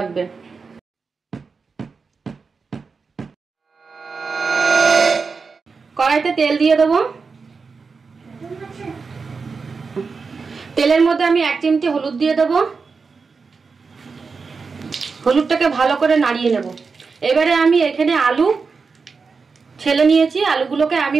কড়াইতে তেল দিয়ে দেব। তেলের মধ্যে আমি 1 চিমটি হলুদ দিয়ে দেব। হলুদটাকে ভালো করে নাড়িয়ে নেব। এবারে আমি এখানে আলু ছেলে নিয়েছি, আলুগুলোকে আমি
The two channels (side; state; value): left; quieter; 4.9 dB